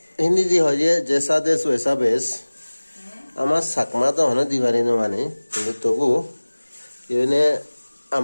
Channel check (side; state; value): both; inverted; correlation -1.00